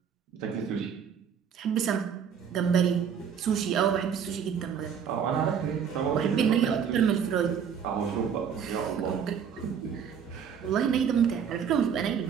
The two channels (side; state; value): left; quieter; 7.5 dB